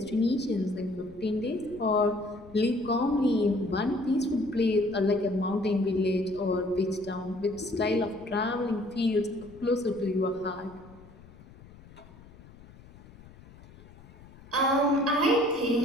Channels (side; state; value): left; noise; rumble, 21 dB below the sound